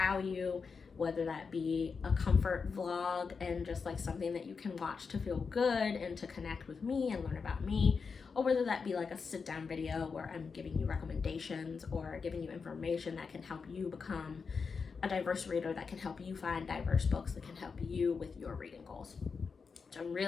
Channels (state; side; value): quieter; right; 5.3 dB